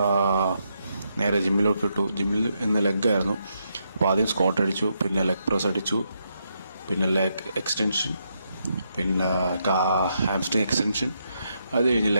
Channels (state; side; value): inverted; both; correlation -0.80